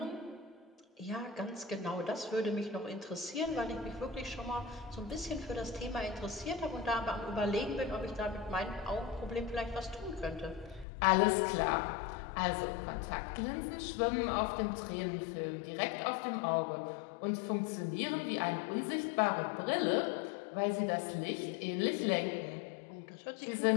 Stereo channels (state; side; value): drops out; right; at 10.9 s